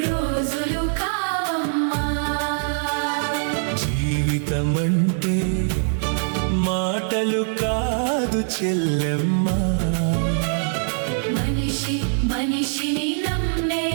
రోజులు కావమ్మా. జీవితమంటే మాటలు కాదు చెల్లెమ్మా, మనిషి మనిషిని నమ్మే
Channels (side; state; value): left; silent; digital silence